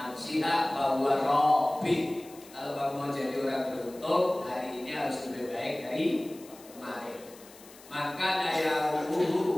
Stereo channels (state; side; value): noise; left; hiss, 21 dB below the sound